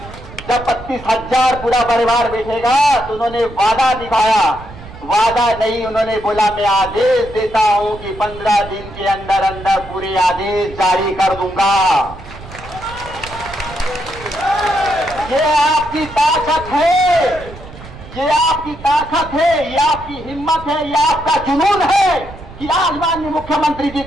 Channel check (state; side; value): noise; right; rumble, 16 dB below the sound